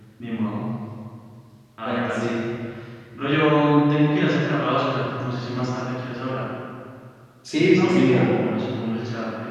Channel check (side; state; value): both; identical; correlation 1.00